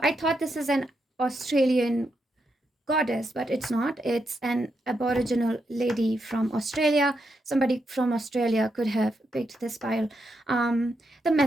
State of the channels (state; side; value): normal; both; correlation 0.82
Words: I thought this is an Australian goddess, but it's not. It's an aboriginal lady from Australia. Somebody from Australia could have picked this pile. The